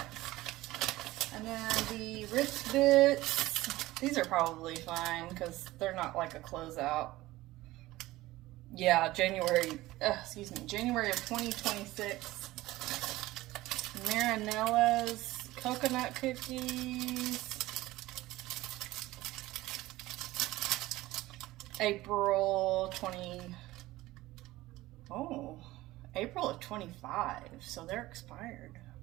And then the wrist bits, these are probably fine because they're not like a closeout. Yeah, January of 2026. Marinella's coconut cookies. April of 25, so they're expired.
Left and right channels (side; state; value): left; quieter; 17.7 dB